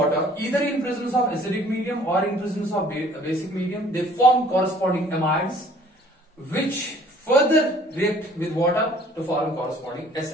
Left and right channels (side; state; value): both; normal; correlation 0.55